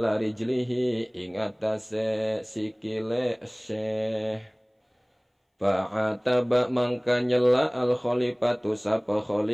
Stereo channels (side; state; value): both; identical; correlation 1.00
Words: rijlihi ing atase sikile Syekh. Fa'ataba mangka nyela al khalifatu sapa